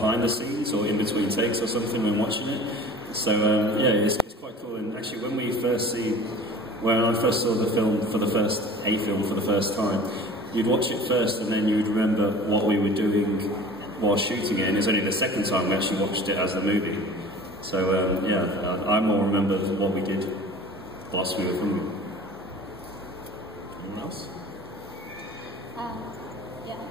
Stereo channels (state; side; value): normal; both; correlation 0.42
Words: the scenes or in between takes or something when watching it. So yeah, it's quite cool. And actually, when I first saw the film for the first time, you'd watch it first, and then you'd remember what we were doing while shooting it. And it's only the second time we actually watched it as a movie. So yeah, I more remember what we did whilst we were filming. Anyone else? Yeah.